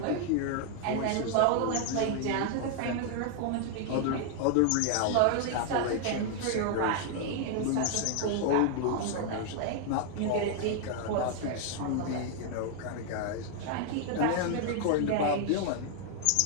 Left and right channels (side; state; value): both; different; correlation 0.00